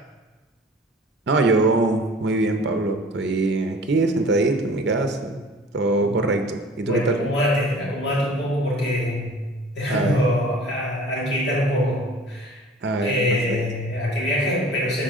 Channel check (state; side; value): normal; both; correlation 0.46